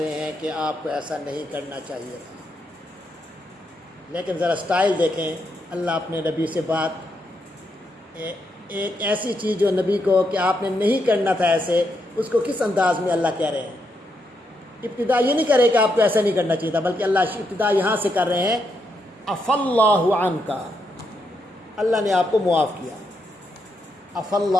رہے ہیں کہ آپ کو ایسا نہیں کرنا چاہیے تھا۔ لیکن ذرا سٹائل دیکھیں، اللہ اپنے نبی سے بات، ایک ایسی چیز جو نبی کو کہ آپ نے نہیں کرنا تھا ایسے، اس کو کس انداز میں اللہ کہہ رہے ہیں۔ ابتدا یہ نہیں کرے کہ آپ کو ایسا نہیں کرنا چاہیے تھا، بلکہ اللہ ابتدا یہاں سے کر رہے ہیں عفى اللہ عنک، اللہ نے آپ کو معاف کیا۔ عفى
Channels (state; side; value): normal; both; correlation 0.80